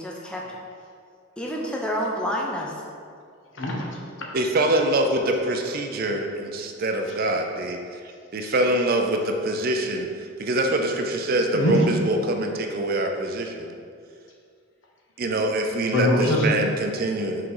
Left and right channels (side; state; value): both; normal; correlation 0.23